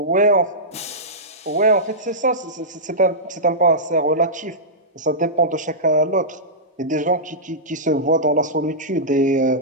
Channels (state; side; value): normal; both; correlation -0.15